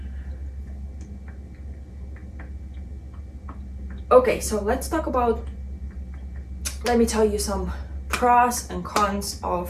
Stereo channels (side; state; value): both; identical; correlation 1.00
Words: okay, so let's talk about let me tell you some pros and cons